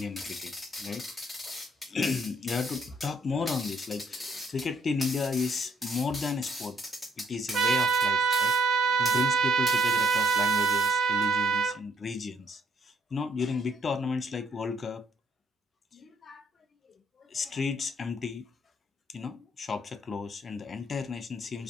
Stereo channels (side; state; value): both; normal; correlation 0.68